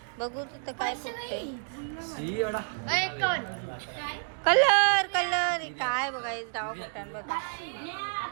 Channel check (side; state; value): left; silent; digital silence